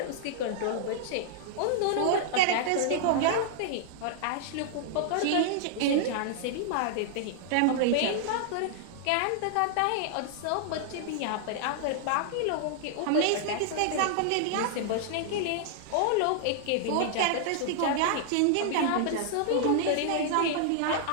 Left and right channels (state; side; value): different; both; correlation -0.01